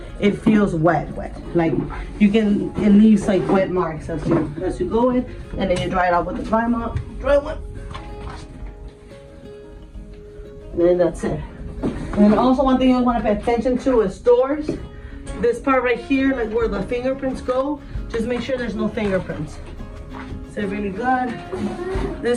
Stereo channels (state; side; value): identical; both; correlation 1.00